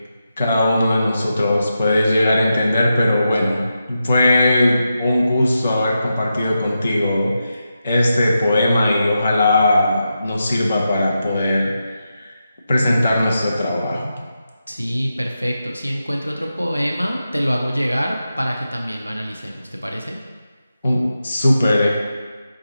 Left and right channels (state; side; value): inverted; both; correlation -0.88